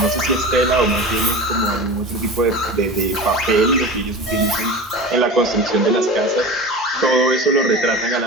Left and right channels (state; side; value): normal; both; correlation 0.31